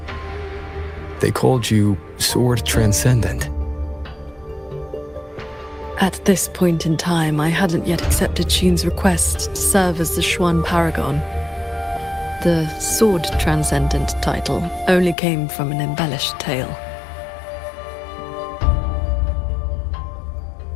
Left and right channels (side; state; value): right; drops out; at 15.2 s